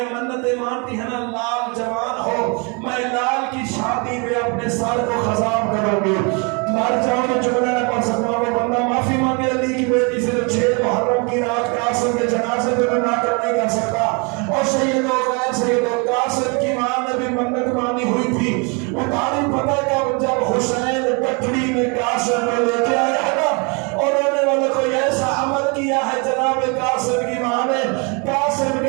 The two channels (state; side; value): quieter; left; 32.4 dB